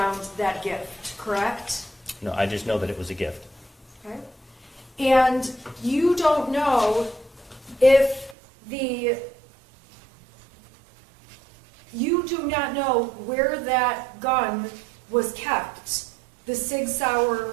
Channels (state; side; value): drops out; left; at 8.3 s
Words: that gift, correct? No, I just know that it was a gift. Okay. And you don't know if you do not know where that gun was kept, the Sig Sauer